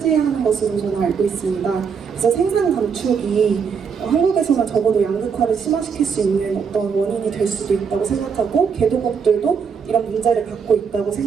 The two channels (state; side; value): quieter; left; 6.3 dB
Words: 것으로 저는 알고 있습니다. 그래서 생산 감축이 한국에서는 적어도 양극화를 심화시킬 수 있는 어떤 원인이 될 수도 있다고 생각하고 개도국들도 이런 문제를 갖고 있다고